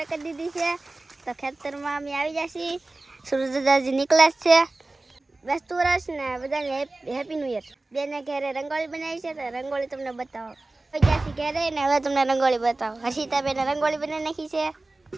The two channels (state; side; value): quieter; left; 3.0 dB